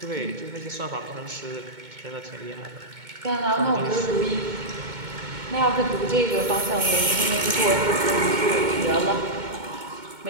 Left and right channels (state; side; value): late; left; 2.2 ms